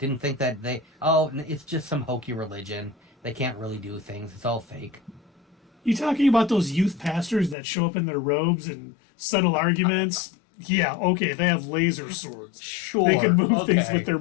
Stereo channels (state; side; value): drops out; right; at 7.6 s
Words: think that it's just some hokey religion. They can't really do things. It's all fake. You talking about those youth pastors that show up in their robes and settle arguments? Yeah, okay, they have laser swords. Sure. They can move things okay. with their